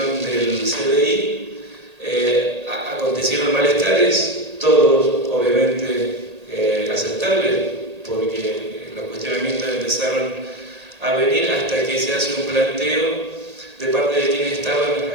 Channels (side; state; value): left; late; 1.8 ms